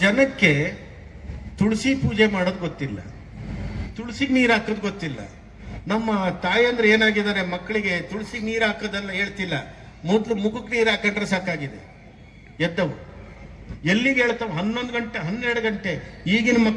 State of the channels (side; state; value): both; identical; correlation 1.00